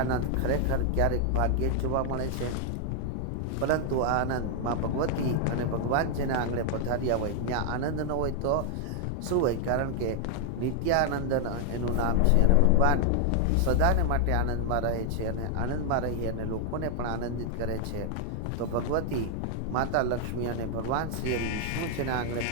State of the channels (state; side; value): different; both; correlation 0.00